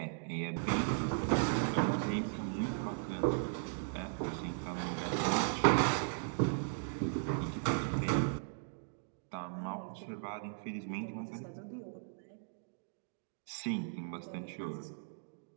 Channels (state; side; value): silent; left; digital silence